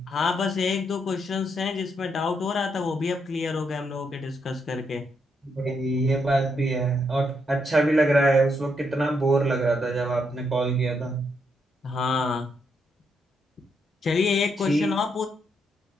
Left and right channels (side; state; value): both; normal; correlation 0.78